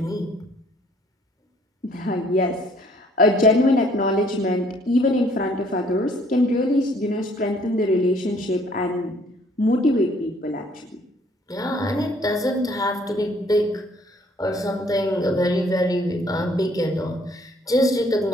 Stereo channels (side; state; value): both; normal; correlation 0.61